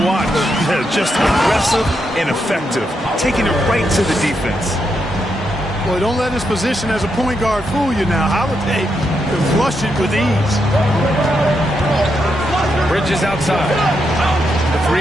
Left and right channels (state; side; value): normal; both; correlation 0.82